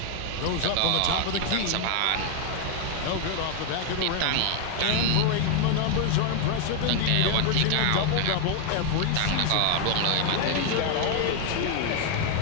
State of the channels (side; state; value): both; different; correlation 0.01